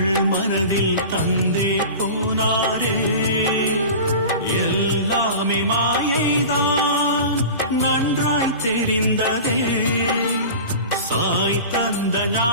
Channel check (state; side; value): inverted; both; correlation -0.35